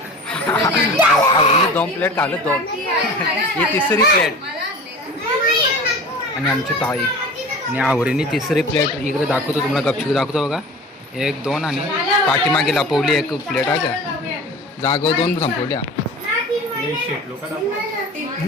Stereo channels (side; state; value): both; normal; correlation 0.37